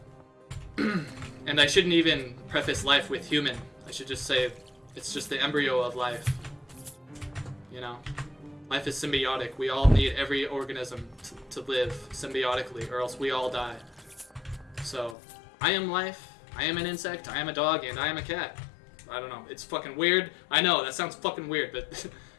And I shouldn't even preface life with human. I should just say it's just the embryo of life. You know? Life is symbiotic. We all need every organism to live symbiotically, or else we all die. So, I am life, I am an insect, I am a dog, and I am a cat. I don't know. It's fucking weird. I know, that sounds fucking weird, but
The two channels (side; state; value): right; drops out; at 15.2 s